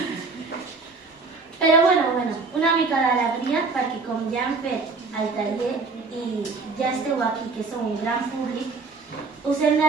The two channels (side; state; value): left; quieter; 4.1 dB